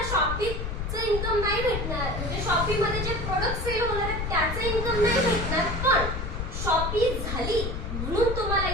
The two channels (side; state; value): left; noise; rumble, 4 dB below the sound